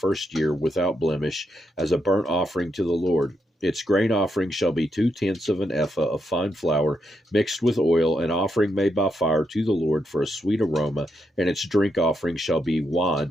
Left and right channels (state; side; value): normal; both; correlation 0.81